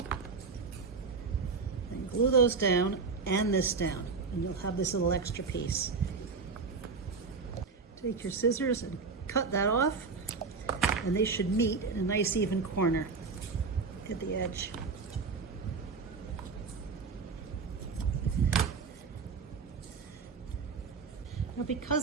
And glue those down and this down, and you'll have this little extra piece. Take your scissors and cut that off, and they should meet in a nice even corner at the edge. Now,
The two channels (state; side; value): quieter; left; 4.8 dB